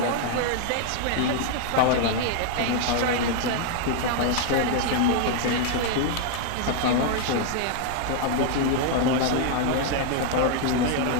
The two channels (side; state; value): both; different; correlation 0.00